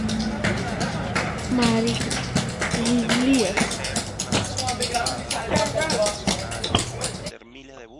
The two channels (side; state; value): both; identical; correlation 1.00